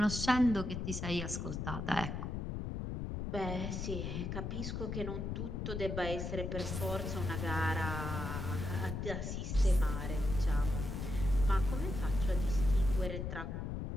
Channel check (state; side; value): noise; left; rumble, 4 dB below the sound